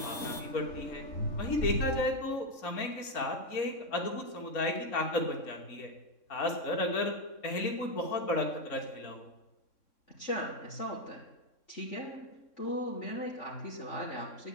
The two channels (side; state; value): right; late; 3.6 ms